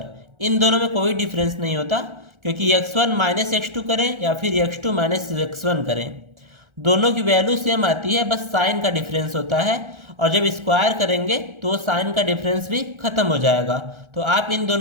इन दोनों में कोई डिफरेंस नहीं होता क्योंकि x1 माइनस x2 करें या फिर x2 माइनस x1 करें, दोनों की वैल्यू सेम आती है, बस साइन का डिफरेंस होता है। और जब स्क्वायर करेंगे तो साइन का डिफरेंस भी खत्म हो जाएगा। तो आप इन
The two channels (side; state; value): left; late; 1.3 ms